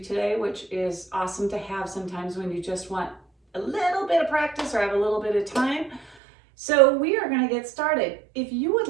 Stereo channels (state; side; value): drops out; left; at 6.2 s